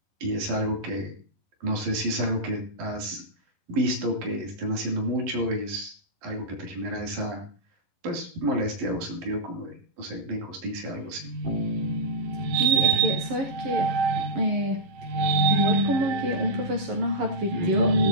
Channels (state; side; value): late; left; 11 ms